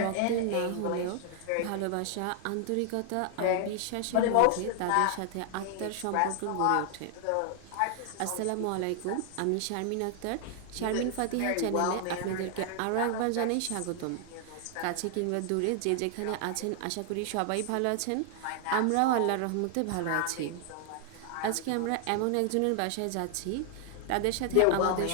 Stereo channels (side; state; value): both; different; correlation 0.00